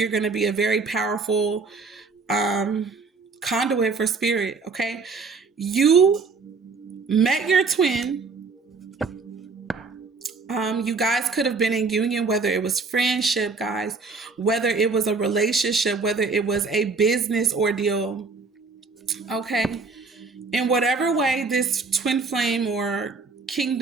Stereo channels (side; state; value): left; quieter; 4.4 dB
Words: going to be a very powerful um, conduit for spirit. Okay. You met your twin. You guys could have been in union, whether it was friendship, guys, whether it was a relationship, whether it was a business ordeal. Okay. In whatever way this twin flame or